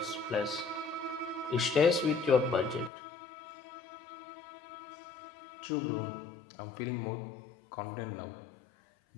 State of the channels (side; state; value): right; drops out; at 2.9 s